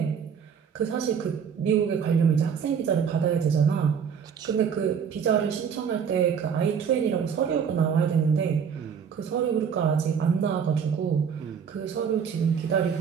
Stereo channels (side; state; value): left; quieter; 7.1 dB